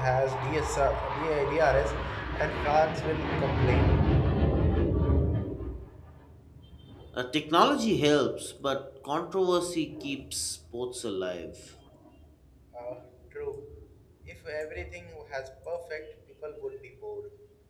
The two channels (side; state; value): both; identical; correlation 1.00